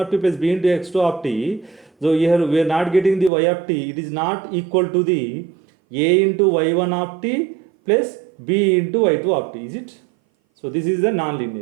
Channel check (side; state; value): left; drops out; at 3.3 s